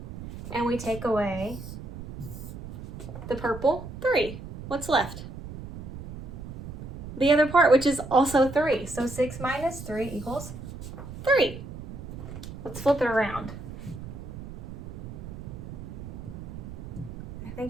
and we take away the purple, 3, what's left? The other part, which is also 3. So 6 minus 3 equals 3. Let's flip it around. I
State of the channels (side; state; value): right; noise; rumble, 11 dB below the sound